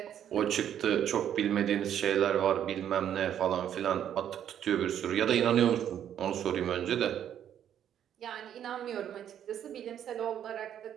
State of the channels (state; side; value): quieter; left; 9.9 dB